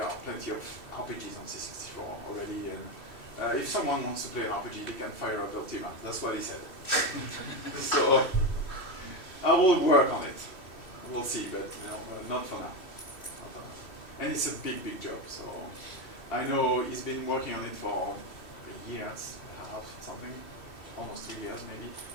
are plenty of RPGs on C64 already, and if someone wants to play an RPG, they can fire up Ultima. That's what he said. So I will work on it. We'll see, but not for now. Not for now. And it's a big, big job. So I know he's been working on it for a year and a half, something, almost 3 years maybe.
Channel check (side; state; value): right; late; 2.9 ms